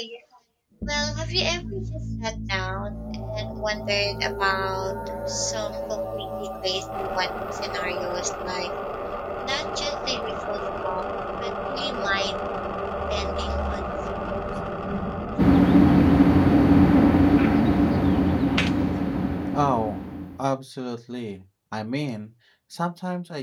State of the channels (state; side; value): identical; both; correlation 1.00